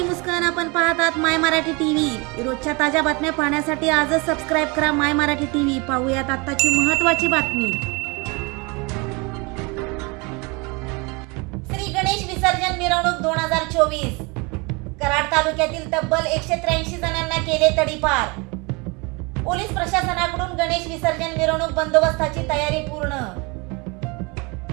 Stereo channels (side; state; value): left; quieter; 28.4 dB